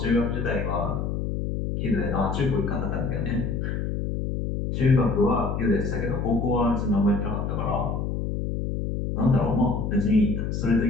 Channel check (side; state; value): left; noise; hum, 2 dB below the sound